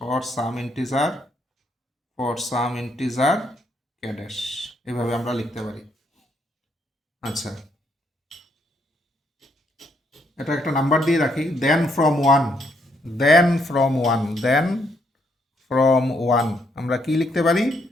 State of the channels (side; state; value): both; normal; correlation 0.73